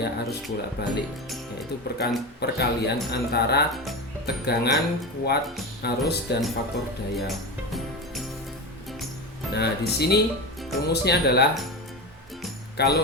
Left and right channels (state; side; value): normal; both; correlation 0.22